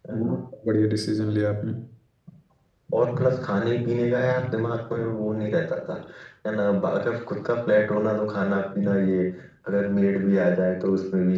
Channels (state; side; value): identical; both; correlation 1.00